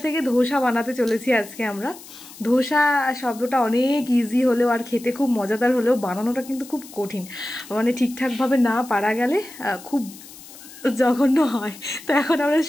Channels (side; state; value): left; noise; hiss, 18 dB below the sound